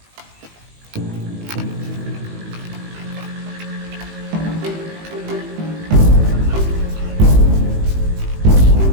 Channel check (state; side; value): late; left; 18 ms